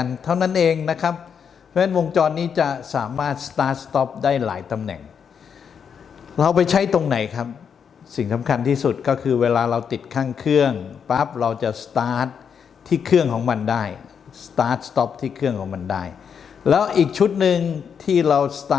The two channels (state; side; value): quieter; right; 7.1 dB